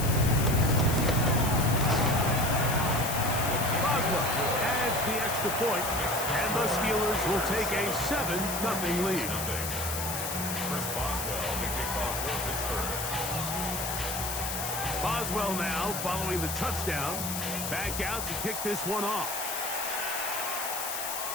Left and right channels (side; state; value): left; noise; hiss, 4 dB below the sound